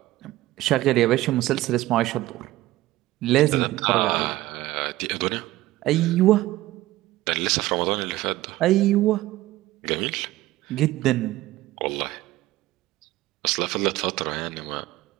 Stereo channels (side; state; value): left; quieter; 16.6 dB